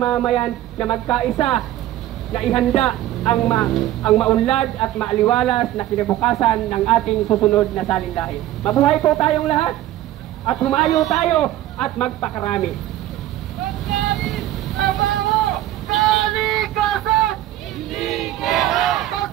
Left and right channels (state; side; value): quieter; left; 14.0 dB